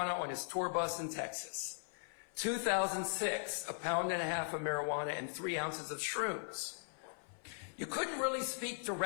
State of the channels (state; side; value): silent; right; 52 dB below the other